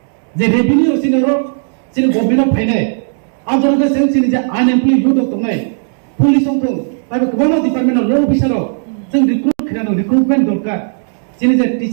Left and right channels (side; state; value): left; silent; digital silence